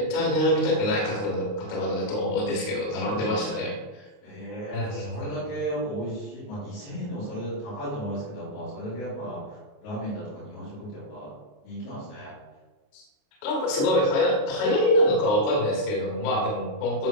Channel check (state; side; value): late; right; 28 ms